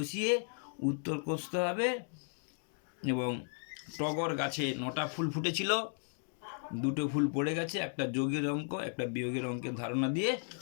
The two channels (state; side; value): silent; right; 54 dB below the other